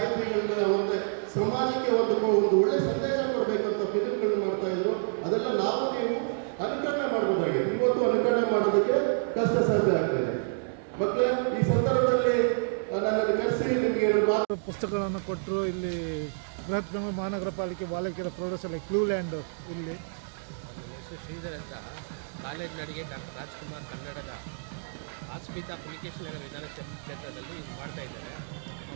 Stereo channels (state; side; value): silent; left; digital silence